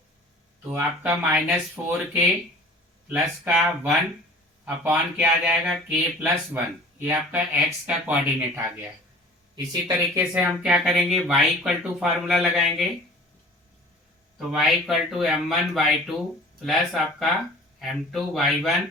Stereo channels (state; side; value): normal; both; correlation 0.45